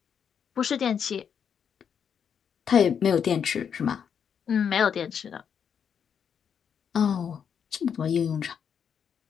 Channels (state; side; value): quieter; right; 7.5 dB